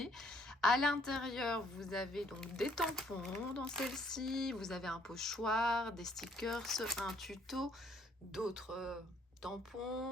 À l'intérieur, vous avez donc des tampons dans celle-ci, vous avez un pochoir, des stickers, un tuto, d'autres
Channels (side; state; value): both; normal; correlation 0.64